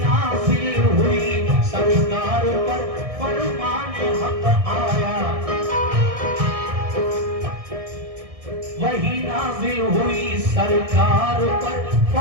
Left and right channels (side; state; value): left; late; 1.6 ms